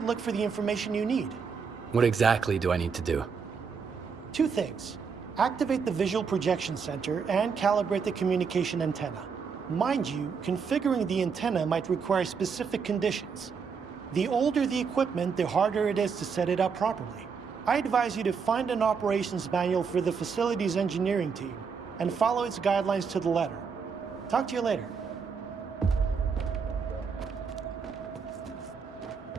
look for the information you need. What exactly do I need to do? 2 things. Activate the visual projection center and calibrate the communication antenna. Mind you, configuring the antenna might require specific conditions. The older the equipment, the harder it is to set it up properly. I advise you to find an operations manual for the facility's engineering team and follow its guidelines to the letter. Talk to you later.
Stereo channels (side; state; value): left; quieter; 5.9 dB